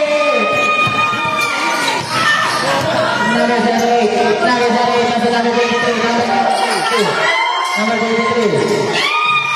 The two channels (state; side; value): identical; both; correlation 1.00